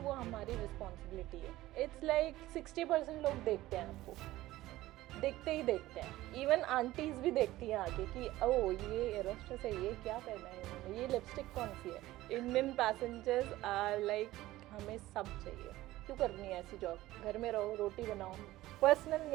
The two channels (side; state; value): left; quieter; 16.5 dB